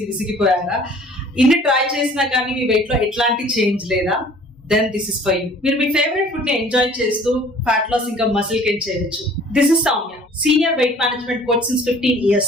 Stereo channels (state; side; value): normal; both; correlation 0.51